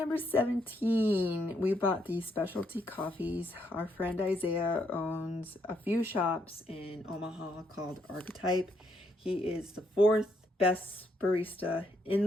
17. We bought these specialty coffees. Our friend Isaiah owns a few shops in Omaha called Archetype. He is the 4th best barista in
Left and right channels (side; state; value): both; normal; correlation 0.75